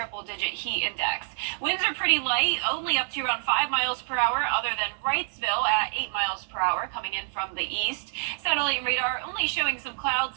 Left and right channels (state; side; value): silent; left; 60 dB below the other